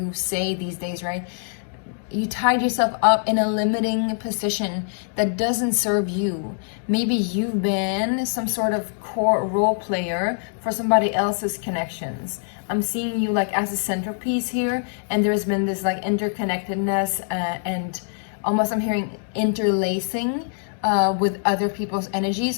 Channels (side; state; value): right; silent; digital silence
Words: say these days, right? You tied yourself up in a limiting position that doesn't serve you. Maybe you've been some sort of core role player for somebody else's connections. I'm seeing you like as a centerpiece here, and there's been this like interconnectedness and almost I'm hearing interlacing with other people's